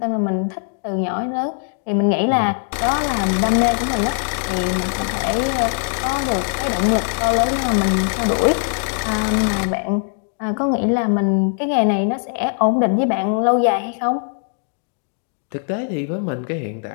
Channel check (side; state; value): right; silent; digital silence